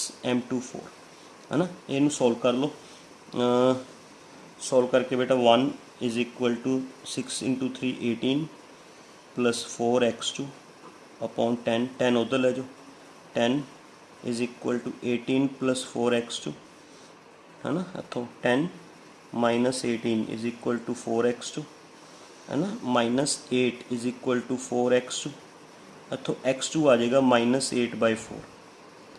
M2 4, है ना। इनू सॉल्व कर लो, सॉल्व करके बेटा 1 is equal to 6 into 3 18 plus 4 x2 upon 10, 10 उधर ले जाओ, 10 is equal to 18 plus 4 x2, है ना। इतों 10 minus 18 is equal to 4 x2, है ना, minus 8 is equal to 4 x2, इतों x2 आ जाएगा -8/4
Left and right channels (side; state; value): both; identical; correlation 1.00